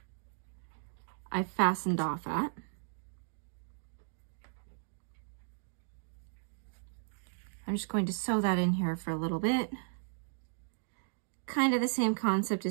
I fastened off at. I'm just going to sew that in here for a little bit. Kind of the same concept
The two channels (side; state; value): left; silent; digital silence